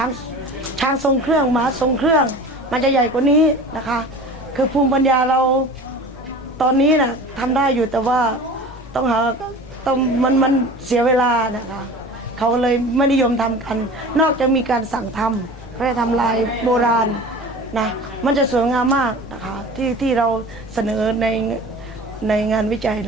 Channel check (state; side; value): normal; both; correlation 0.38